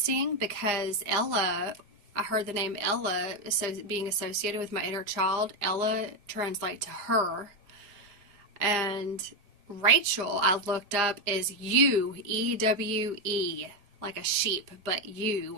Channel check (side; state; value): left; late; 4.8 ms